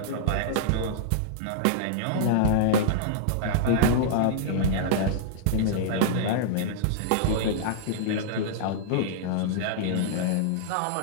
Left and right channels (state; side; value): different; both; correlation -0.02